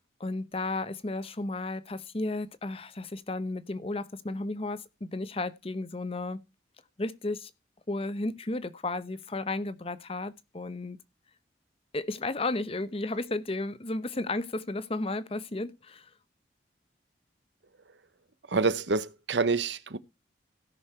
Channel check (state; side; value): normal; both; correlation 0.30